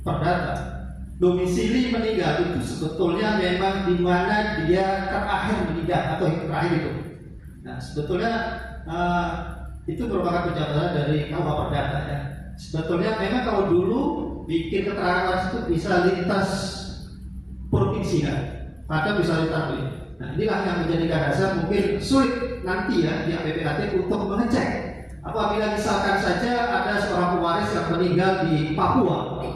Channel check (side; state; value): both; identical; correlation 1.00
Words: perdata, domisili meninggal itu sebetulnya memang di mana dia terakhir meninggal atau yang terakhir itu. Nah, sebetulnya itu merupakan penjelasan dari KUH Perdata ya. Sebetulnya memang kalau dulu bikin keterangan waris itu bisa lintas provinsi kan, atau bisa lintas ini. Nah, inilah yang menjadikan dasar mungkin sulit nanti ya pihak PPAT untuk mengecek apabila misalkan saja ada seorang pewaris yang meninggal di Papua,